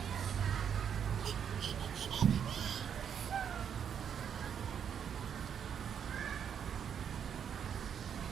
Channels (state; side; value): quieter; left; 8.1 dB